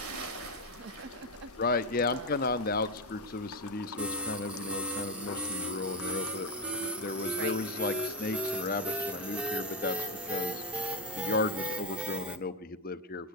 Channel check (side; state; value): both; normal; correlation 0.08